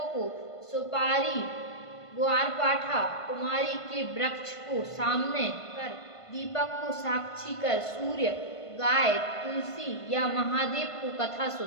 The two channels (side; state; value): right; late; 1.5 ms